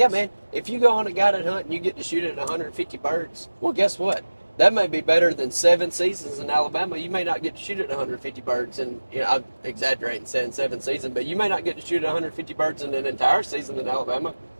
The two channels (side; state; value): both; inverted; correlation -1.00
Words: man. If you go on a guided hunt and you get to shoot at 150 birds, well, guess what? that may be better than 7 seasons in Alabama. You may not get to shoot at 150 birds, and I'm exaggerating saying 7 seasons, but you may not get to shoot at 150 birds in an entire season in Alabama.